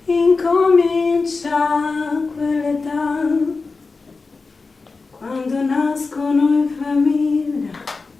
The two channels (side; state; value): right; quieter; 4.1 dB